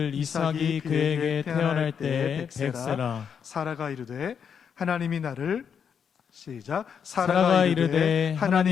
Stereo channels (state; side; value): quieter; right; 7.3 dB